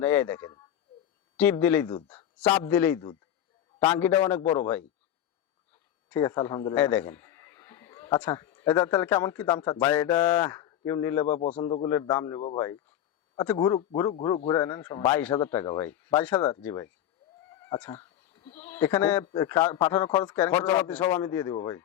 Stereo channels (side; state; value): right; quieter; 11.2 dB